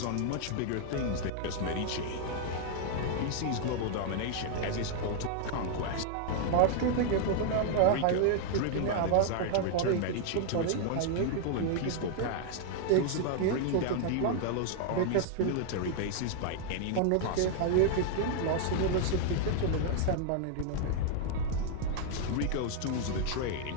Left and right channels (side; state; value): both; different; correlation 0.00